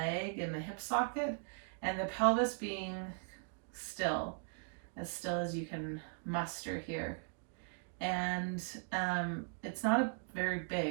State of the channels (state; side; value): silent; left; 52 dB below the other